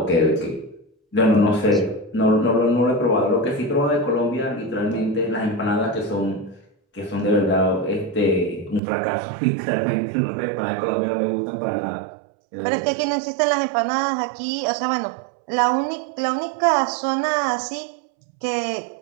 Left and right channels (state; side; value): drops out; left; at 8.8 s